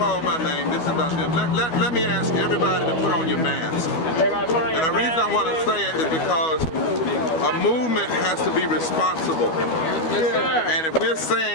my name. This is about them. Let me ask everybody to put on your mask. And the reason I want to say it is because a movement has to be responsible. And if we're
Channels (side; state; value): right; late; 12 ms